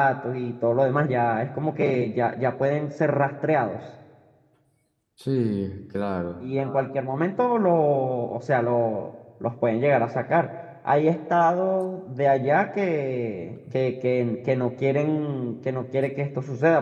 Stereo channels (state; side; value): identical; both; correlation 1.00